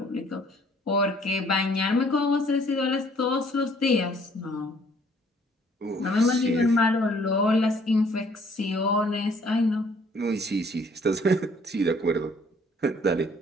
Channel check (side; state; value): both; normal; correlation 0.60